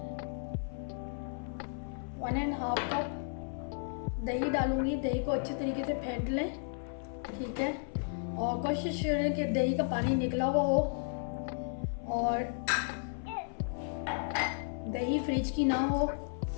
1.5 कप दही डालूँगी। दही को अच्छे तरीके से फेंट लें। ठीक है, और कोशिश करें कि दही का पानी निकला हुआ हो और दही फ्रिज की ना हो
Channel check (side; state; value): right; silent; 55 dB below the other